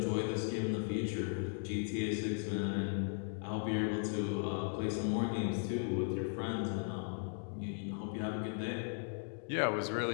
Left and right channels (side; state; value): right; silent; 53 dB below the other